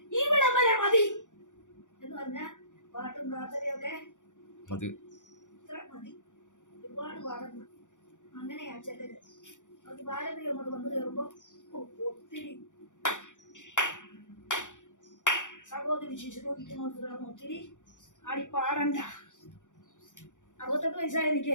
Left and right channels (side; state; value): right; late; 0.86 ms